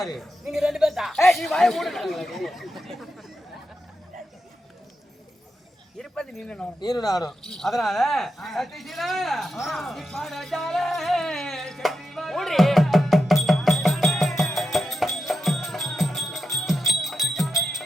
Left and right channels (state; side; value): normal; both; correlation 0.87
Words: நீங்க ரெண்டு பேர் தான். நீ வாய மூடு. இருப்பது நீனும் நீரு நானும். அதனால சத்தியசீலா, நீ பாடாட்டாலே செட்டி வா. ஓடி